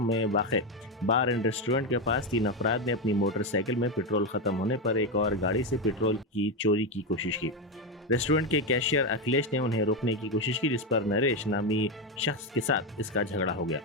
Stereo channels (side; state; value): both; normal; correlation 0.10